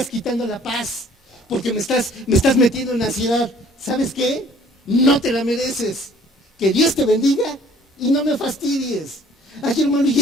quitando la paz, porque me estás metiendo en ansiedad. ¿Sabes qué? No te la mereces. Que Dios te bendiga y no me fastidies. Ay, hermano, ¿y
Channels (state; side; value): normal; both; correlation 0.56